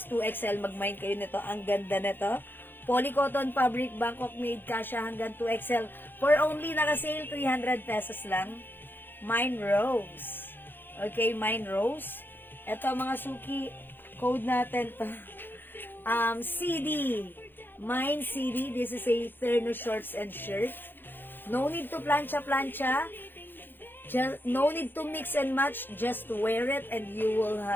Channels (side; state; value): right; late; 0.097 ms